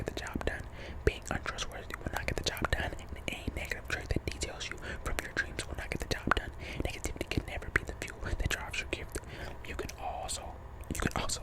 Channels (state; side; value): identical; both; correlation 1.00